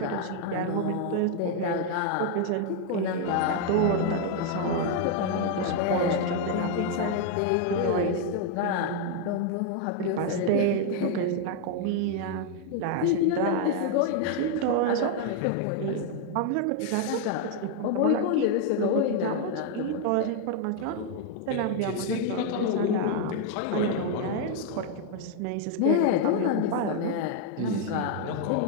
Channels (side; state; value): both; different; correlation 0.00